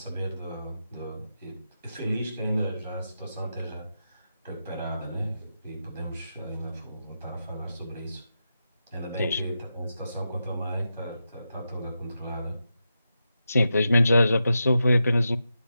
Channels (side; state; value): both; inverted; correlation -0.88